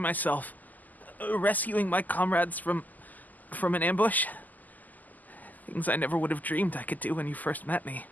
rescuing my comrades from an ambush. Things I never would have dreamed I could do when you first met me.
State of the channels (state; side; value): late; right; 0.082 ms